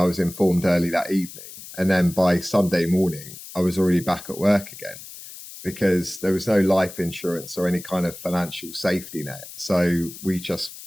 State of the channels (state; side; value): noise; left; hiss, 14 dB below the sound